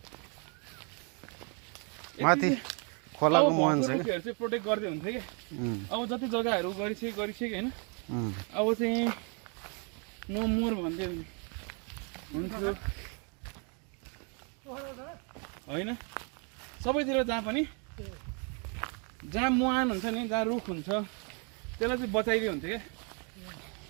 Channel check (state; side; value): quieter; left; 36.0 dB